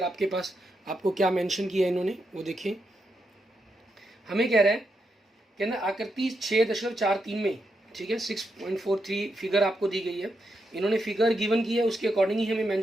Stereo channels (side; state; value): both; normal; correlation 0.83